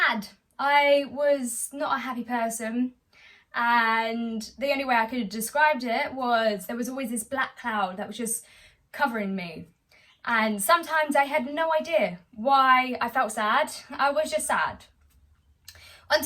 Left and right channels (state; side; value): identical; both; correlation 1.00